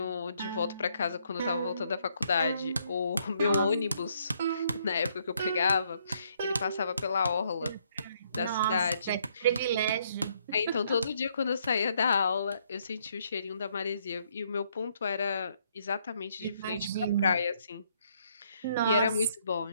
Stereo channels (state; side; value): inverted; both; correlation -0.70